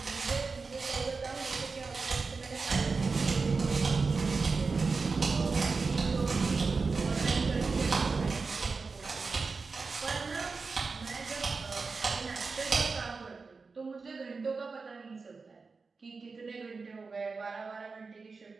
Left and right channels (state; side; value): quieter; left; 4.4 dB